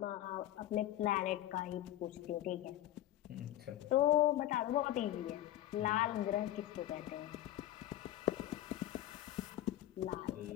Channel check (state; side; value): quieter; right; 13.2 dB